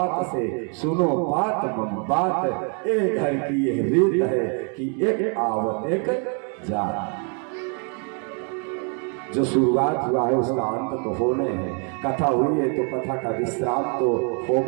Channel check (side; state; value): left; quieter; 39.5 dB